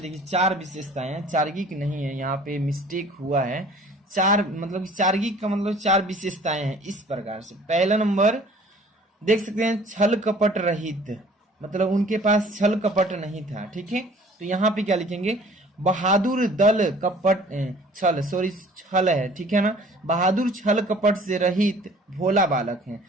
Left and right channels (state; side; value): normal; both; correlation 0.51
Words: 4 विशेषताएं हैं, चार्गिक नहीं है, यहाँ पे मिस्टेक हुआ है। 4 मतलब चार्गिक का मतलब 4 विशेषताएं हैं इस प्रकार से। पहला नंबर देख सकते हैं, छल कपट रहित, मतलब उनके पास छल कपट नहीं था। ठीक है, तो यहाँ पे क्या लिखेंगे, बहादुर दल कपट छल है। ठीक है ना, बहादुर छल कपट से रहित भोला बालक है,